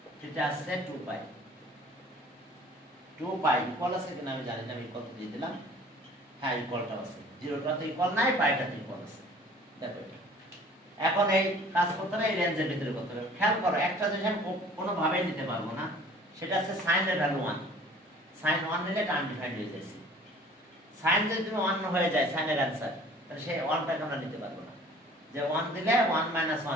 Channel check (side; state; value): both; normal; correlation 0.50